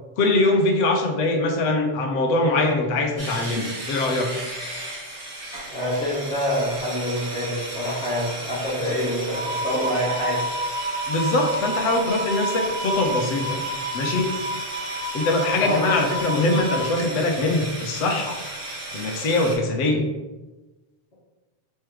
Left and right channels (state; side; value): late; right; 7.2 ms